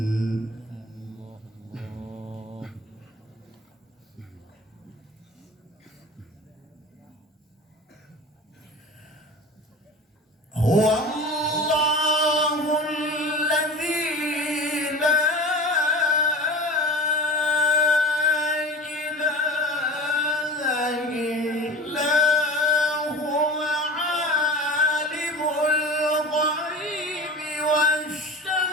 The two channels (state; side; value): normal; both; correlation 0.36